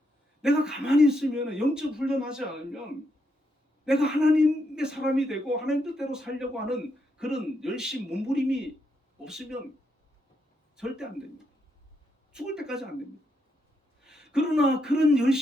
내가 가만히 있으면, 영적 훈련하지 않으면 내가 하나님의 사람이 되고 하나님 뜻대로 살려고 하는 그런 열심, 몸부림이 없으면 절대 안 됩니다. 죽을 때까지 안 됩니다. 그러나 그런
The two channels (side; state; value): both; normal; correlation 0.80